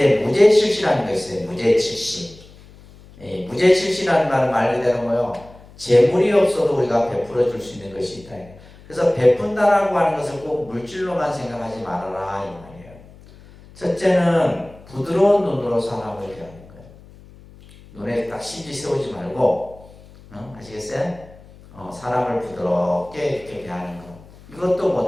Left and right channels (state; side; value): noise; left; hum, 22 dB below the sound